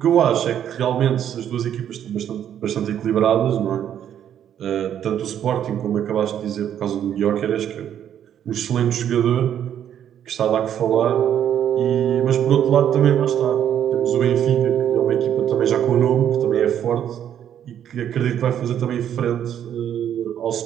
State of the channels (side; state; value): left; quieter; 9.8 dB